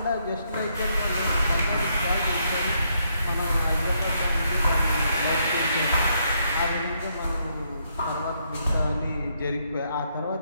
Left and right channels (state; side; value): inverted; both; correlation -0.75